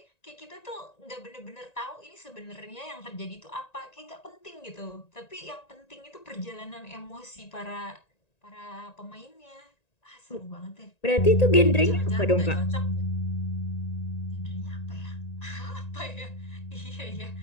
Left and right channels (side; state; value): right; late; 1.9 ms